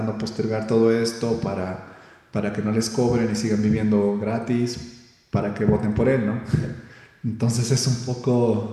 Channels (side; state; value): both; identical; correlation 1.00